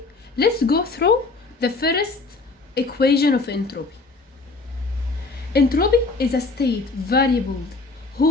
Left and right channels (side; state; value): right; quieter; 3.8 dB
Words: let's go through the first equation of entropy. Entropy is a state variable